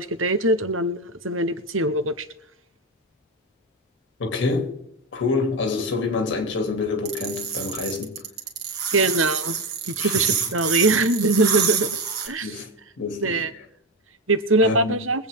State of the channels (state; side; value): normal; both; correlation 0.15